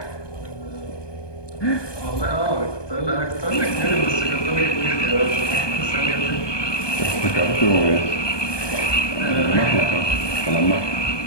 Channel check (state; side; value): late; right; 1.2 ms